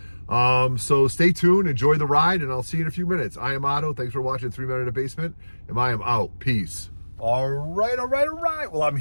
So stay tuned, enjoy the ride, and I'll see you in a few minutes. I am Otto. Thanks for watching 3 Men in a Basement, and I am out. Peace. All right. Well, I'm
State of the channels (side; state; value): both; inverted; correlation -1.00